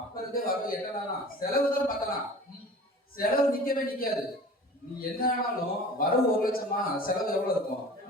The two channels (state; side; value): normal; both; correlation 0.41